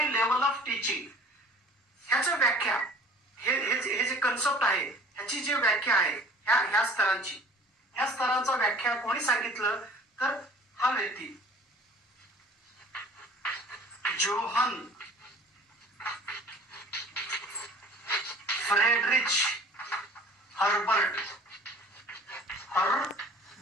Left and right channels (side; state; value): both; normal; correlation 0.48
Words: लेवल ऑफ टीचिंग, ह्याची व्याख्या, हे जे कन्सेप्ट आहे ह्याची जी व्याख्या आहे ह्या स्तरांची, ह्या स्तरांचा व्याख्या कोणी सांगितलं तर हा व्यक्ती जोहन फ्रेडरिच हर्बर्ट